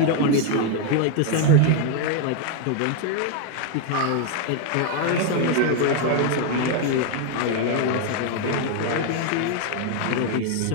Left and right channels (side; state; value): both; different; correlation 0.01